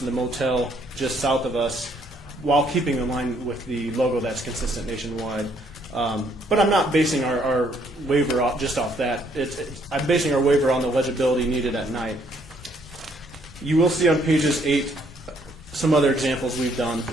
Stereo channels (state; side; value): normal; both; correlation 0.67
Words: and the motel just south of us, while keeping in line with the logo that's consistent nationwide. But I'm not basing our waiver just off that. I'm basing our waiver on the legibility needed at night. You will see on pages 8 some other examples we've done.